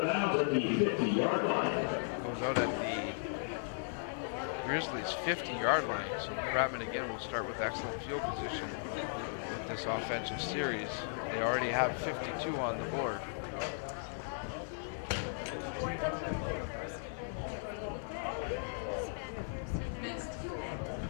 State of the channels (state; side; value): silent; right; 53 dB below the other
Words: It goes out at the Grizzlies' 50-yard line. So the Fratmen again will start with excellent field position with this offensive series. They already have 52 on the board.